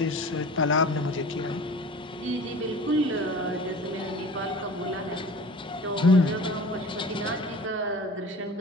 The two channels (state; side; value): normal; both; correlation 0.40